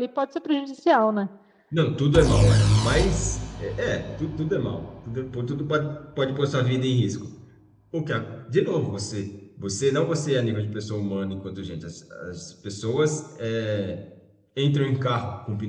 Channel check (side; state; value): both; identical; correlation 1.00